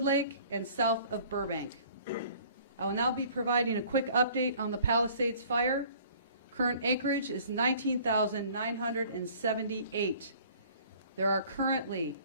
and south of Burbank. I will now be providing a quick update on the Palisades fire. Current acreage is 19,978. There are currently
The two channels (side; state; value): both; inverted; correlation -0.52